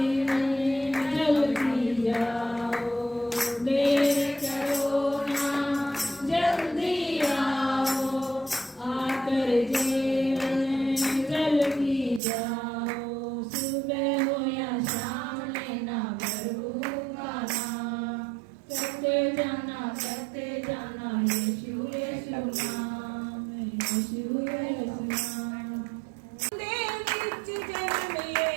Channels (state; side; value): drops out; left; at 12.2 s